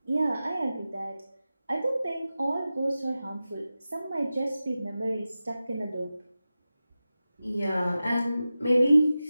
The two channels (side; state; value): both; inverted; correlation -0.94